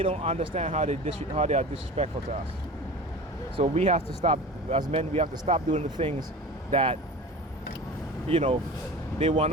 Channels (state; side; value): normal; both; correlation 0.35